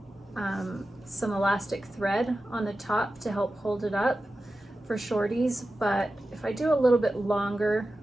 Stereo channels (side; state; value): both; normal; correlation 0.93